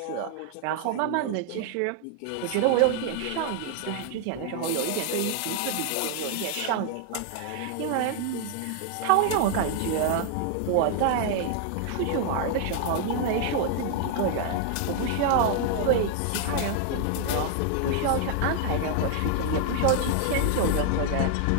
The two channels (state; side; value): different; both; correlation 0.00